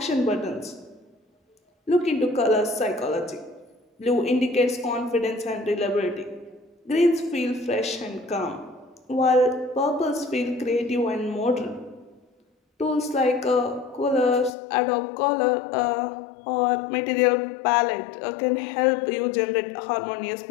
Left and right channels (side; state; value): right; drops out; at 14.5 s